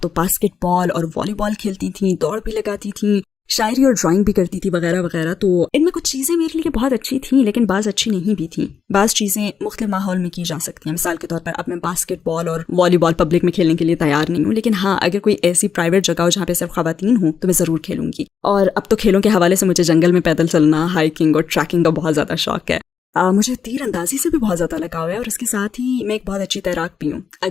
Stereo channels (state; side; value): quieter; right; 6.8 dB